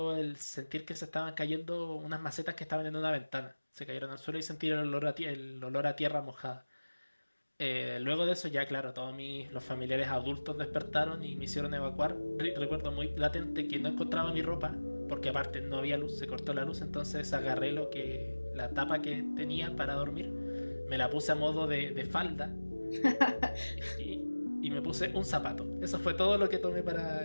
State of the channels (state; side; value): inverted; both; correlation -1.00